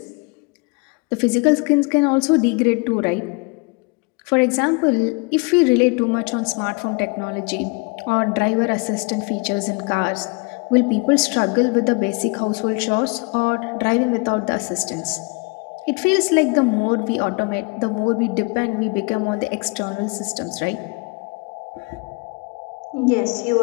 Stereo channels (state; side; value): quieter; right; 30.0 dB